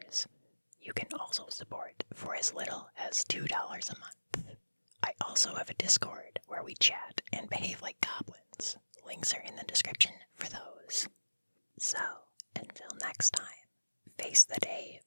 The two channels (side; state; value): both; inverted; correlation -1.00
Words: You can also support for as little as $2 a month. I also have a Discord where we chat and behave like goblins. Links are in the description for those. So, until next time, face the day